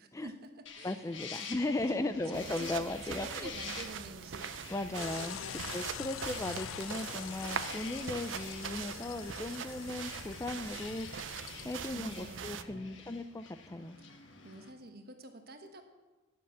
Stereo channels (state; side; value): normal; both; correlation 0.51